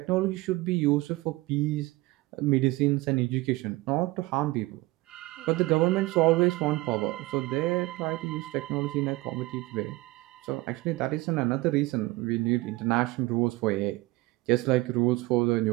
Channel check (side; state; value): left; quieter; 20.7 dB